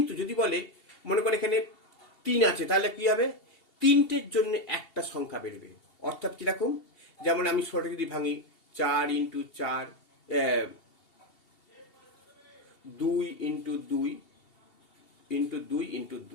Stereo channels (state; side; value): late; right; 2.7 ms